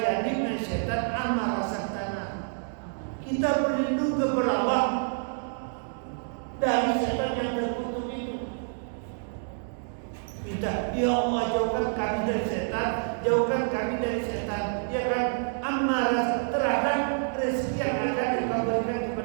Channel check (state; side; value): silent; left; digital silence